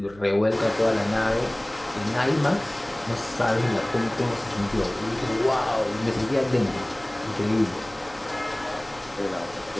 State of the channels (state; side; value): noise; right; hum, 23 dB below the sound